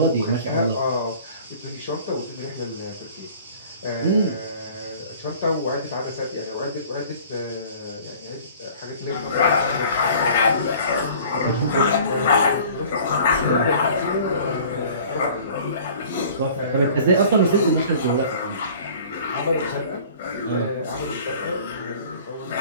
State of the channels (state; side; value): inverted; both; correlation -0.48